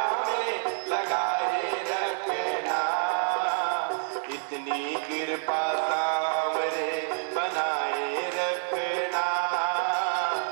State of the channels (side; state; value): left; silent; digital silence